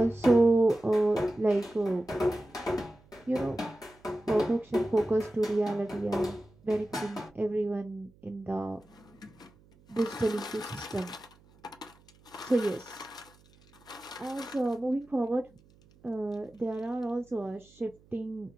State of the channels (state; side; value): noise; right; hum, 28 dB below the sound